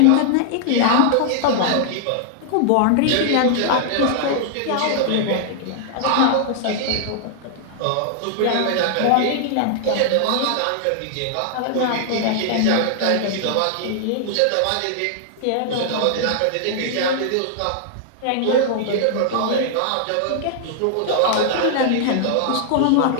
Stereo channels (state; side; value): different; both; correlation -0.01